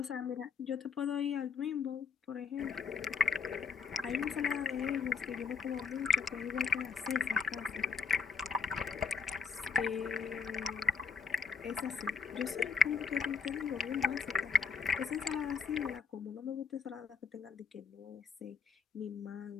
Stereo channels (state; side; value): quieter; right; 6.0 dB